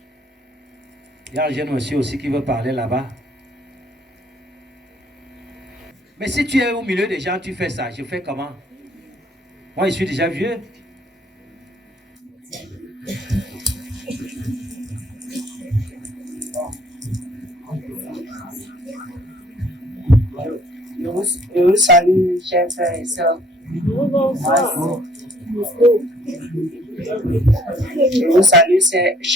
Il y a un jeune monsieur aussi qui veut parler là-bas. Mais si tu es au milieu des gens, tu fais ça. Je fais comment? Moi, je suis déjà vieux. Je vous salue, chers frères et sœurs. Je vous salue,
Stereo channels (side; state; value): both; normal; correlation 0.60